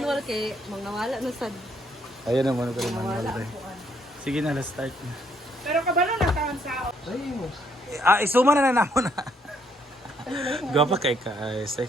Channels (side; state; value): both; normal; correlation 0.70